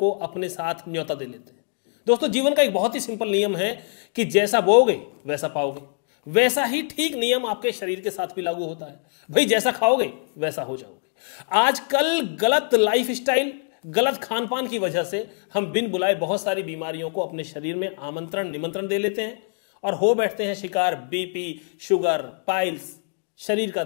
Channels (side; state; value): right; silent; 63 dB below the other